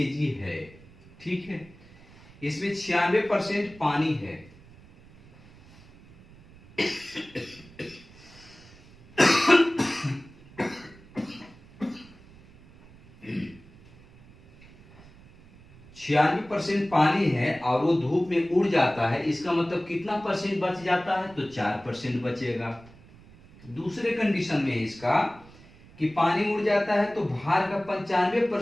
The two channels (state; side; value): noise; right; rumble, 23 dB below the sound